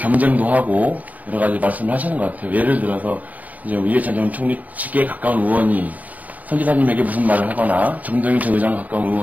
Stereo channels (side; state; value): left; late; 0.075 ms